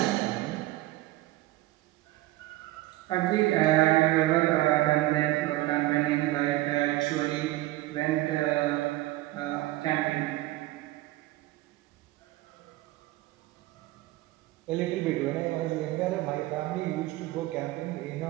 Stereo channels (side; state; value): left; quieter; 17.4 dB